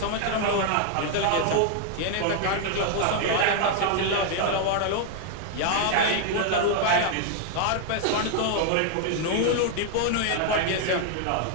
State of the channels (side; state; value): both; different; correlation 0.00